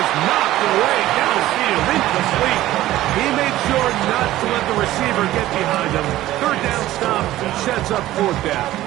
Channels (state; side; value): quieter; left; 15.1 dB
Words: knocked away downfield, incomplete. He made sure not to let the receiver get behind him. 3rd down stop sets up 4th down.